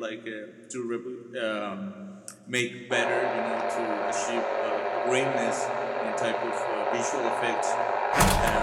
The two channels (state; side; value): identical; both; correlation 1.00